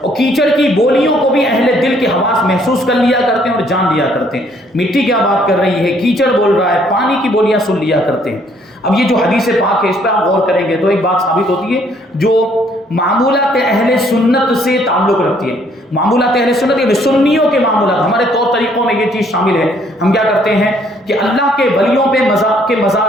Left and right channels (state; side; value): normal; both; correlation 0.65